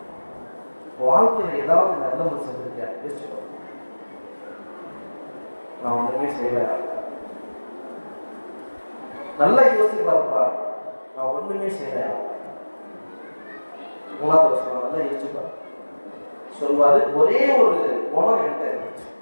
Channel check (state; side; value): inverted; both; correlation -1.00